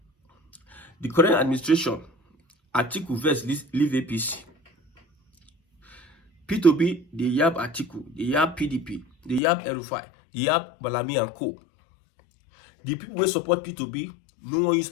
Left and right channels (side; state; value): right; drops out; at 9.4 s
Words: The current administration, Atiku versus leave APC. Peter Obi, they yab Atiku, they yab PDP, they yab Erufai, they yab Malami and Co. The people who support Peter Obi, no one use